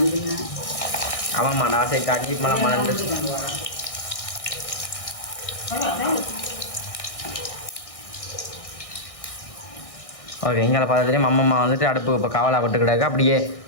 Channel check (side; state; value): right; late; 1.6 ms